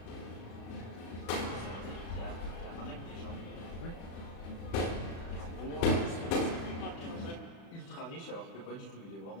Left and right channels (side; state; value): right; late; 35 ms